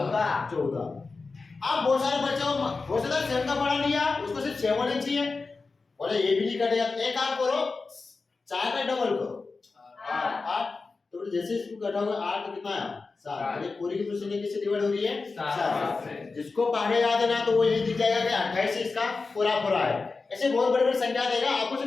14। अब बहुत सारे बच्चों हो सकता है 7 का पढ़ा लिया, उसको सिर्फ 7 होने चाहिए, बोले ये भी नहीं कटेगा, एक काम करो 4 का डबल करो 8, तो जैसे इसको घटाओगे 8 तो कितना है 7, ये पूरी की पूरी संख्या किससे डिवाइड हो रही है 7 से। जिसको पढ़े याद है ना तो वो ये दिख जाएगा कि 28 इसका पूरा है। ऐसे बहुत बड़ी बड़ी संख्या देगा, आपको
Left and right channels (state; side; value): quieter; right; 4.1 dB